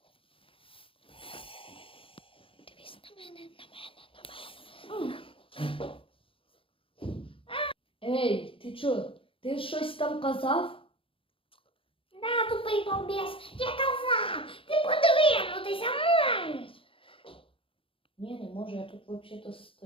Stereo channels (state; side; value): late; right; 0.26 ms